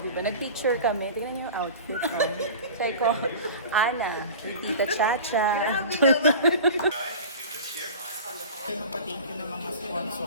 Diba, nag-picture kami. Tingnan niyo yung outfit. So I call Ana, Tita Chacha. Thank you ng mga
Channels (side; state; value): both; inverted; correlation -0.36